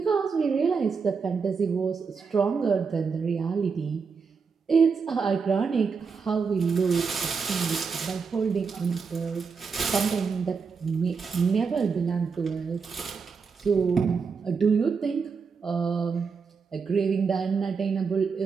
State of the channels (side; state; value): left; quieter; 5.4 dB